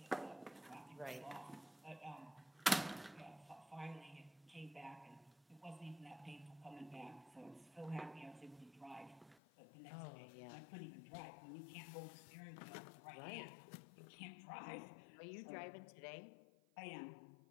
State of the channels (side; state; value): right; drops out; at 9.3 s